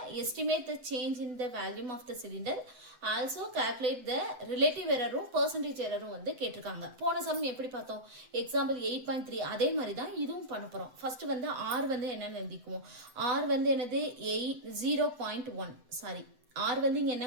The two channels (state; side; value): late; left; 7.9 ms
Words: Estimate the change in the volume of the cylinder. Also calculate the relative error percentage error வந்து கேட்டிருக்காங்க. போன some எப்படி பார்த்தோம்? எக்ஸாம்பிள் 8.3 அதே மாதிரி தான் இதுவும் பண்ண போறோம். ஃபர்ஸ்ட் வந்து R வந்து என்னன்னு எழுதிக்குவோம். R வந்து என்னது 0.1 சாரி R வந்து இங்க